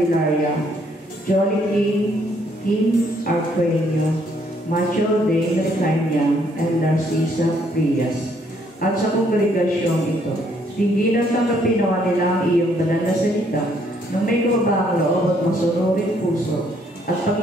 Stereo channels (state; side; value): normal; both; correlation 0.68